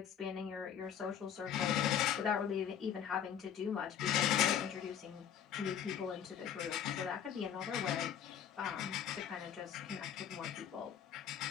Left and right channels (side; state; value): right; quieter; 9.0 dB